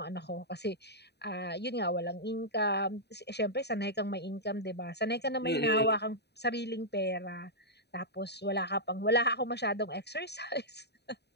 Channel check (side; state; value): right; late; 0.48 ms